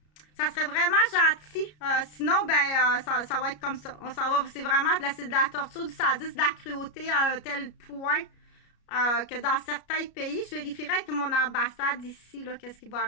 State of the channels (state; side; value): late; right; 33 ms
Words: ça serait vraiment gentil. Sinon, ben, ça va être comme ça. On s'en va, c'est vraiment de la torture, du sadisme, de la cruauté à un tel point que dans certains pays, je vérifierai avec mon ambassade ici, là, qu'est-ce qui va